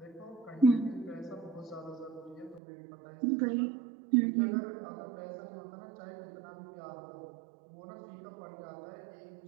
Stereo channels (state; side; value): drops out; left; at 2.6 s